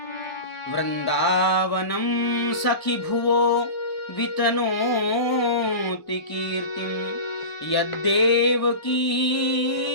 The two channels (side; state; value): right; late; 1.0 ms